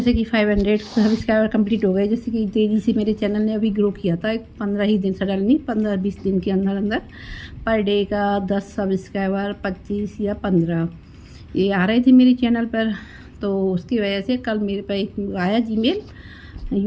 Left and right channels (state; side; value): identical; both; correlation 1.00